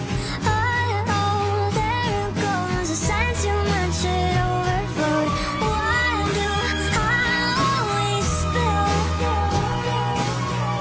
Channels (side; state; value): both; identical; correlation 1.00